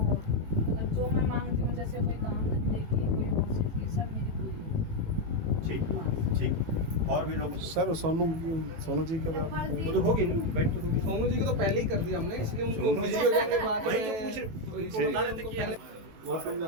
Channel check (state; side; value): late; left; 18 ms